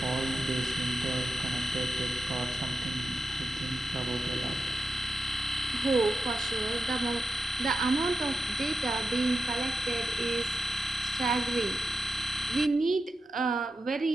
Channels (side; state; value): both; normal; correlation 0.90